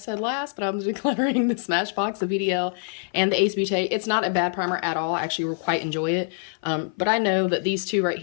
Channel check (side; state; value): right; silent; 55 dB below the other